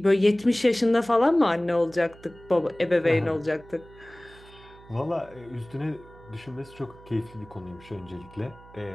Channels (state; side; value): noise; right; hum, 22 dB below the sound